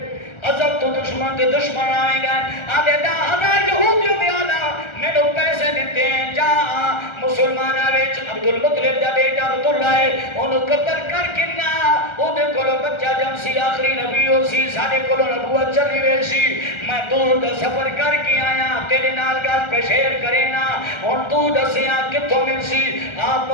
عزب تو دشمن دے دشمن آئیں گا آدھے 10,000 یہودیوں بھی آنا میں نے پیسے دیتے ہیں جا مسلمانہ ویچ عبدالمطلب دا بیٹا عبداللہ ہے انہوں قتل کر کننا انہیں کولو بچہ جم سی آخری نبی ہو سی سارے کولو نبوت چلی ہوئے سی میں دور دا سفر کر کے آیا تیرے نال گل پہ شیر کرے نا ان تو دسیاں کتوں مل سی آپ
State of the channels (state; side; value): late; right; 1.3 ms